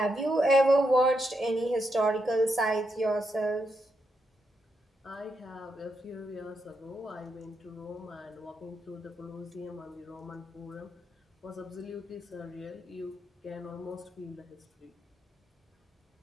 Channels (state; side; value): normal; both; correlation 0.82